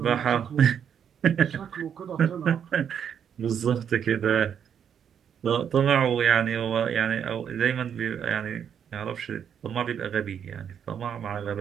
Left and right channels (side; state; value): left; quieter; 8.3 dB